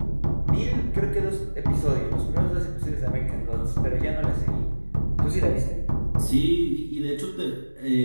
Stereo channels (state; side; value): inverted; both; correlation -1.00